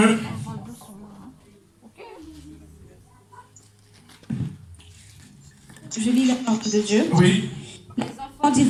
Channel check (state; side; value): identical; both; correlation 1.00